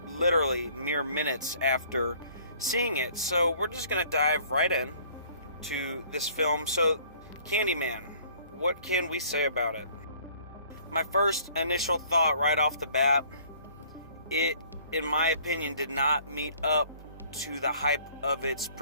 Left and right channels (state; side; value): inverted; both; correlation -0.56